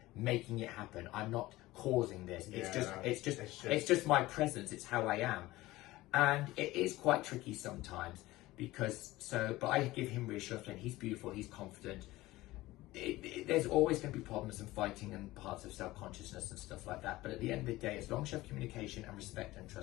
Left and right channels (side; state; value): right; quieter; 18.1 dB